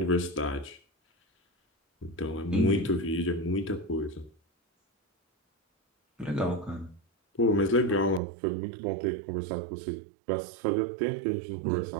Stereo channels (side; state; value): left; drops out; at 8.2 s